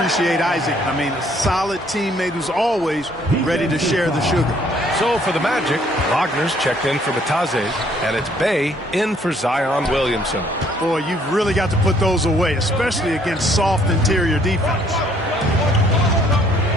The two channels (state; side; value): normal; both; correlation 0.63